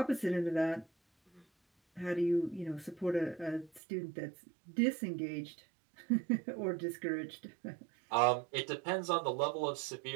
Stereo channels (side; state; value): left; drops out; at 3.8 s